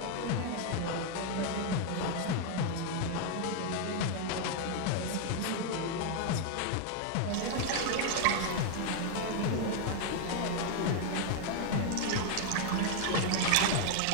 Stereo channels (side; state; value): both; different; correlation 0.00